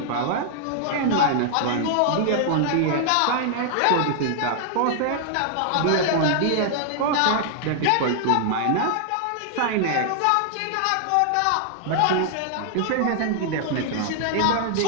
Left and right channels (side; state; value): both; different; correlation 0.00